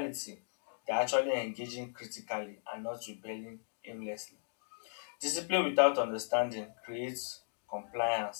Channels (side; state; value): right; silent; digital silence